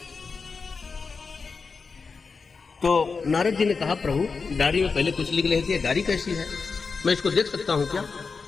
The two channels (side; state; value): right; quieter; 4.8 dB